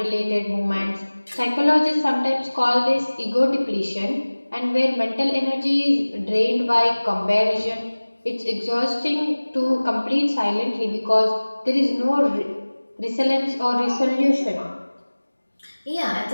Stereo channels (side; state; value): both; inverted; correlation -1.00